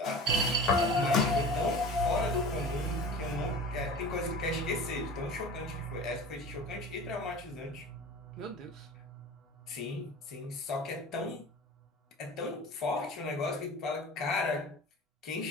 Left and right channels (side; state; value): both; normal; correlation 0.37